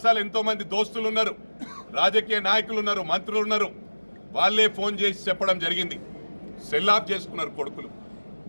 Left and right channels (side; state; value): both; inverted; correlation -1.00